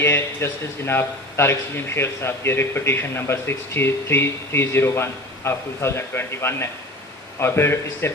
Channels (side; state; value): both; normal; correlation 0.36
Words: ہے جسٹس جناب طارق سلیم شیخ صاحب کی ریٹ پٹیشن نمبر 63301 آف 2021 ہے اور پھر اس سے